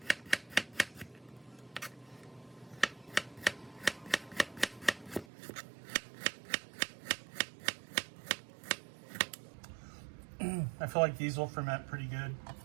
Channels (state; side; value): drops out; left; at 5.2 s